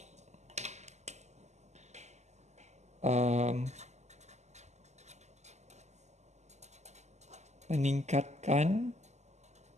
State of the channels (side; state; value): left; late; 0.33 ms